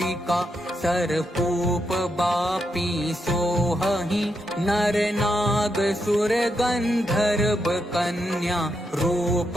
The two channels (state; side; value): normal; both; correlation 0.82